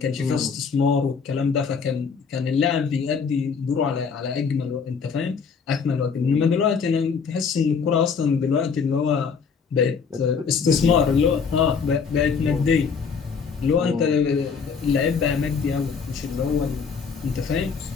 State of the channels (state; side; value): quieter; right; 5.8 dB